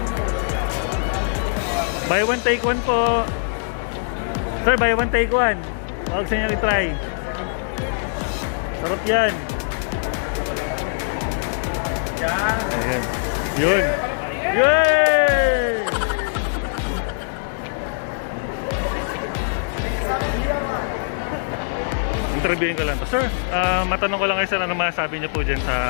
Buy one, take one po. Sir, buy one, take one. Huwag sa inyo i-try. Sarap yan. Ayan. Yun. Yay! Interviewin ko lang to. Sir, matanong ko lang kayo sir, ano masasabi niyo po dyan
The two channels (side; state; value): right; silent; digital silence